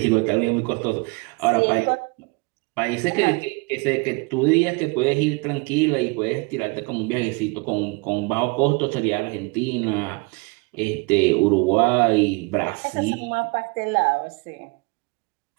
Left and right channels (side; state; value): left; quieter; 28.8 dB